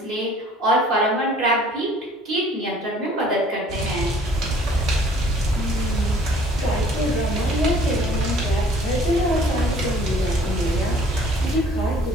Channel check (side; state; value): both; normal; correlation 0.55